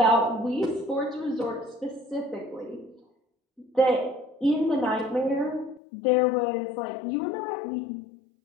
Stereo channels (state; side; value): drops out; right; at 5.8 s